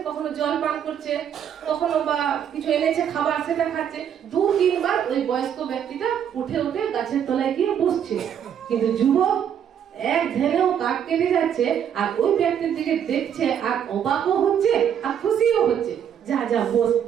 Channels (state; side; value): quieter; left; 8.9 dB